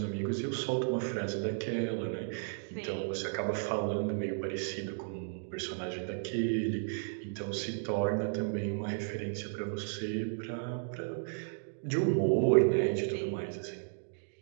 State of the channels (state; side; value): silent; left; digital silence